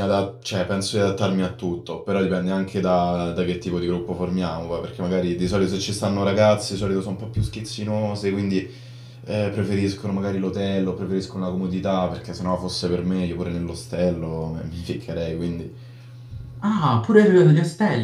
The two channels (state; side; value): identical; both; correlation 1.00